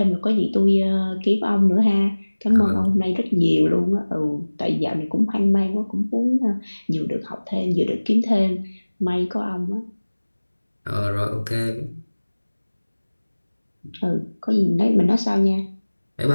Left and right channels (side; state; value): both; inverted; correlation -1.00